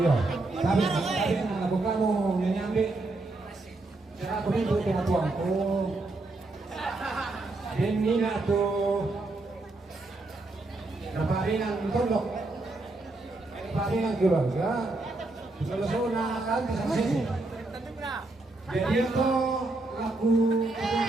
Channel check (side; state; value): left; quieter; 3.0 dB